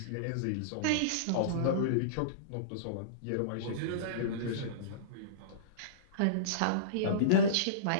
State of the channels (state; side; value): different; both; correlation -0.05